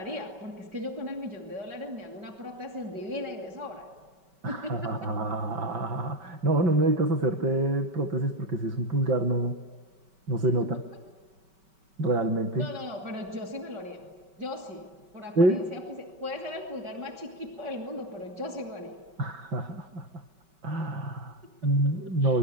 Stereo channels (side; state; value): left; late; 5.2 ms